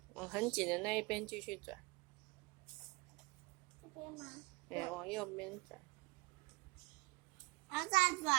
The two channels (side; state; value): left; quieter; 24.0 dB